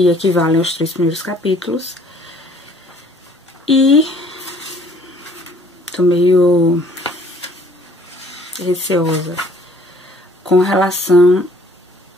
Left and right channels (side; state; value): both; normal; correlation 0.58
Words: equivale aos 3 primeiros capítulos, e tô meio receosa com relação